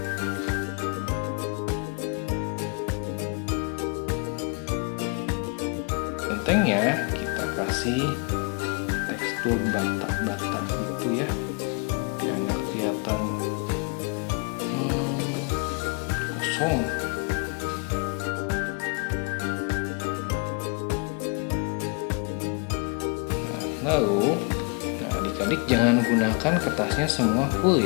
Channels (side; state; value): right; quieter; 36.6 dB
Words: Bentengnya kita kasih tekstur bata-bata gitu ya, biar nggak kelihatan kosong. Lalu, adik-adik jangan gunakan kertasnya semua full